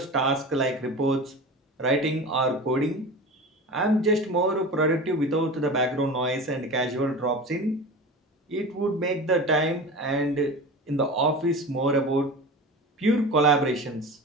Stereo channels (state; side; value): normal; both; correlation 0.32